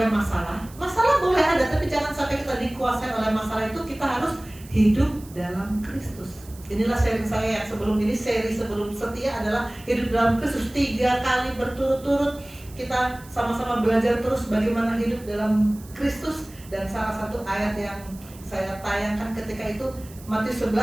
masalah. Masalah boleh ada, tapi jangan sampai kita dikuasai oleh masalah itu. Kita harus hidup dalam Kristus. Inilah sharing saya yang sebelum ini, seri sebelum setia adalah hidup dalam Kristus. 3 kali berturut-turut kita sama-sama belajar terus bagaimana hidup dalam Kristus. Dan salah satu ayat yang saya tayangkan ketika itu Matius 11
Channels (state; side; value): noise; right; hiss, 21 dB below the sound